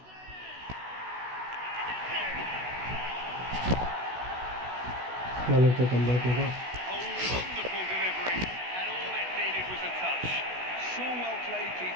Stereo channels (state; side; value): late; left; 16 ms